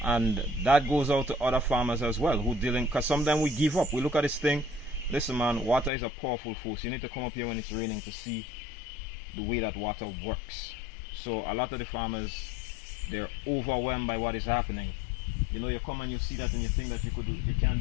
and that goes out to other farmers as well who dealing, because sometimes we give up. We look at this thing, listen man, water is a powerful force. You need to come up here when it's raining to see the way that water works. So a lot of the farmers, they're overwhelmed by what is happening. You know, you come and you see that and you think that you can't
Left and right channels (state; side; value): drops out; right; at 5.9 s